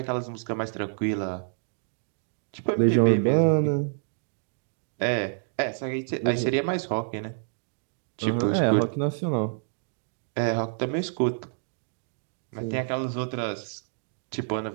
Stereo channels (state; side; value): silent; left; digital silence